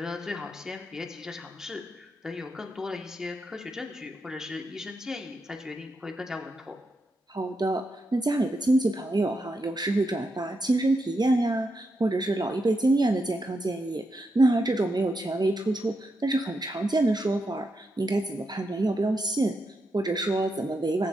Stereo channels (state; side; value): normal; both; correlation 0.84